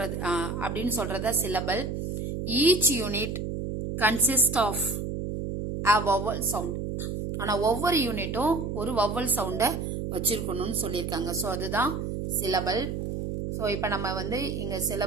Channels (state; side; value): noise; right; hum, 3 dB below the sound